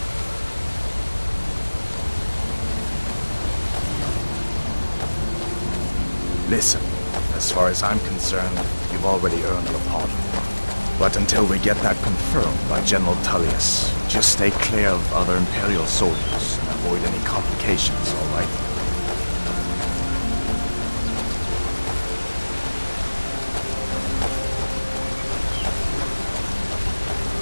Listen, as far as I'm concerned, you've already earned your pardon. But until we get that confirmed by General Tullius, just stay clear of other Imperial soldiers and avoid any complications, all right?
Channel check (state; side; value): inverted; both; correlation -1.00